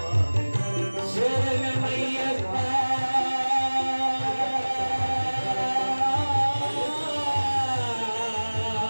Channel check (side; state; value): both; inverted; correlation -1.00